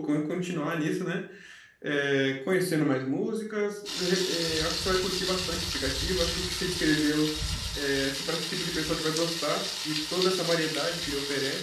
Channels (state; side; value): identical; both; correlation 1.00